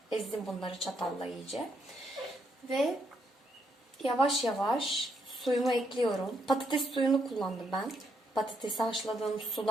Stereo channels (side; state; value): both; normal; correlation 0.76